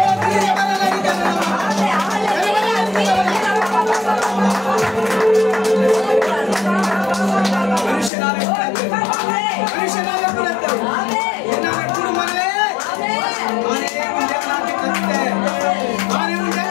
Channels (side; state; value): right; drops out; at 8.1 s